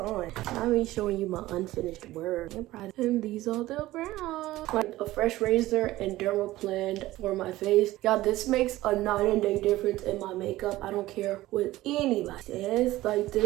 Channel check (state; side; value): quieter; left; 16.7 dB